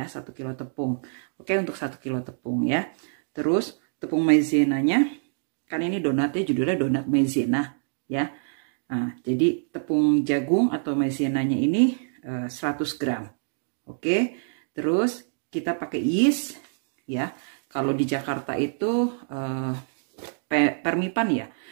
1 kilo tepung. Oke, untuk 1 kilo tepung ya. Terus tepung maizenanya, kan ini donatnya judulnya donat maizena ya. Nah, jadi tepung jagung atau maizenanya ini 100 gram. Oke, terus kita pakai yeast ya. Kalau di Jakarta itu permipan ya.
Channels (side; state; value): left; silent; digital silence